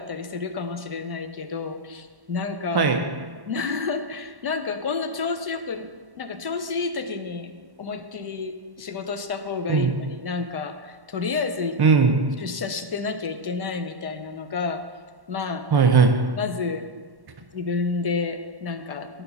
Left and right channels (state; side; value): late; left; 1.1 ms